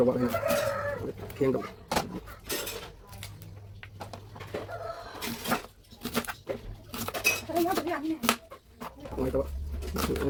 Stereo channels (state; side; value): identical; both; correlation 1.00